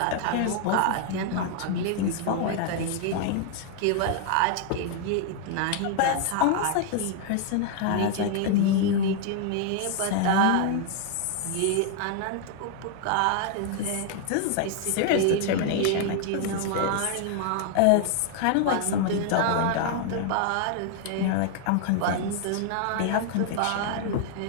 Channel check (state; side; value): different; both; correlation 0.00